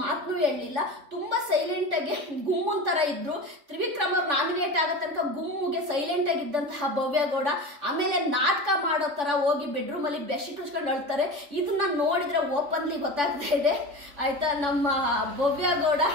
ಮಾತನ್ನು ಹೇಳಲಿಲ್ಲ. ತುಂಬಾ ಸೈಲೆಂಟ್ ಆಗಿ ಗುಮ್ಮನ್ ತರ ಇದ್ರು. ತ್ರಿವಿಕ್ರಮ್ ಅವ್ರು ನಾಮಿನೇಟ್ ನಾಮಿನೇಟ್ ಆಗೋ ತನಕ ಗುಮ್முಗೆ ಸೈಲೆಂಟ್ ಆಗಿದ್ದಂತಹ ಭವ್ಯ ಗೌಡ ಆಮೇಲೆ ನಾಟಕ ಮಾಡೋ ತರ ಹೋಗಿ ಬೆಡ್ರೂಮ್ ಅಲ್ಲಿ ಬೆಡ್ಶೀಟ್ ಉಚ್ಕೊಂಡು ಅಳ್ತಾರೆ. ಇದನ್ನ ನೋಡಿದ್ರೆ ಓಪನ್ಲಿ ಗೊತ್ತಾಗ್ತಾ ಇದೆ ಆಯ್ತಾ, ನಮ್ಮ ಭವ್ಯ ಗೌಡ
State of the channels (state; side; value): late; left; 3.5 ms